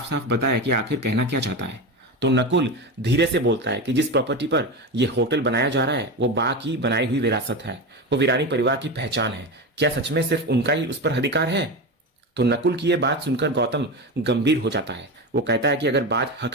साफ बताए कि आखिर कहना क्या चाहता है। तो नकुल धीरे से बोलता है कि जिस प्रॉपर्टी पर यह होटल बनाया जा रहा है वो बा की बनाई हुई विरासत है, वो वीरानी परिवार की पहचान है। क्या सच में सिर्फ उनका ही उस पर अधिकार है? तो नकुल की यह बात सुनकर गौतम गंभीर हो जाता है। वो कहता है कि अगर बात हक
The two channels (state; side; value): normal; both; correlation 0.21